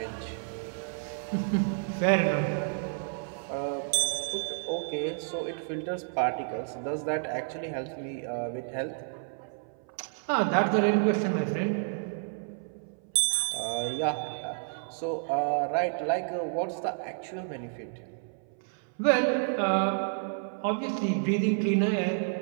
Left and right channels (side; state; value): left; silent; 58 dB below the other